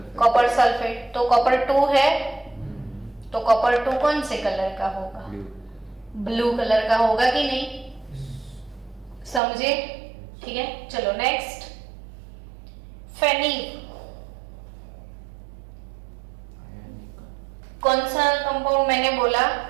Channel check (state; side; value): drops out; left; at 9.4 s